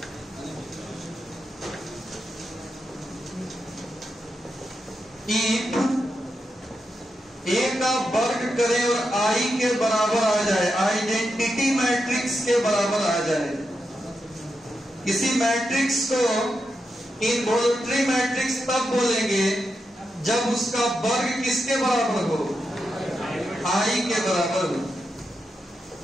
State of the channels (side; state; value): both; normal; correlation 0.87